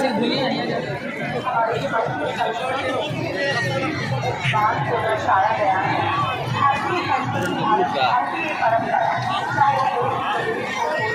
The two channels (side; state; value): both; identical; correlation 1.00